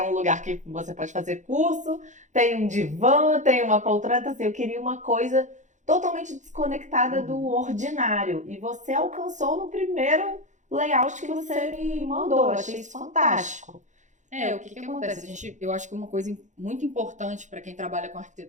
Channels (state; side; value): late; left; 0.35 ms